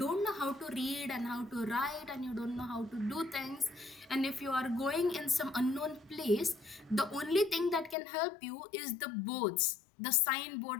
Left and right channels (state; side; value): drops out; right; at 8.0 s